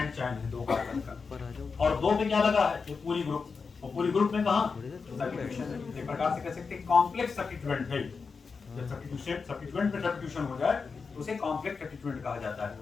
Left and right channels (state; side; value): quieter; right; 5.0 dB